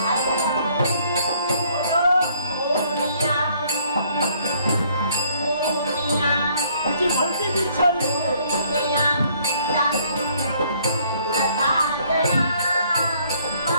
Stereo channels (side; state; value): both; inverted; correlation -0.63